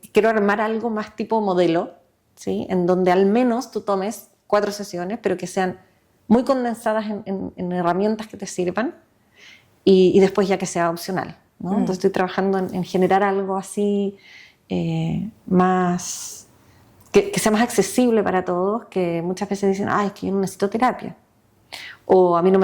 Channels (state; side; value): identical; both; correlation 1.00